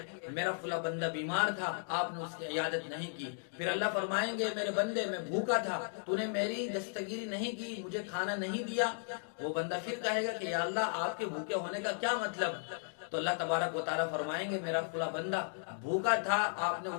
मेरा फुला बंदा बीमार था, आपने उसकी इयादत नहीं की। फिर अल्लाह फरमाएंगे मेरे बंदे, मैं भूखा था, तूने मेरी दस्तगीरी नहीं की, मुझे खाना नहीं दिया। वो बंदा फिर कहेगा कि या अल्लाह, आपके भूखे होने का क्या मतलब। तो अल्लाह तबारक व तआला फरमाएंगे मेरा फुला बंदा भूखा था, आपने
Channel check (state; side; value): silent; right; digital silence